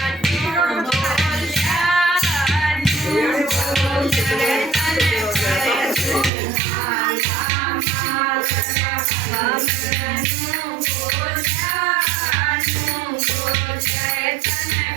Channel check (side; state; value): left; drops out; at 6.3 s